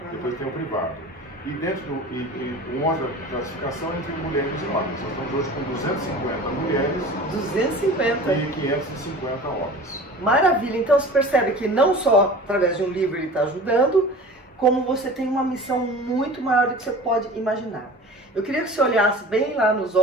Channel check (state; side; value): normal; both; correlation 0.39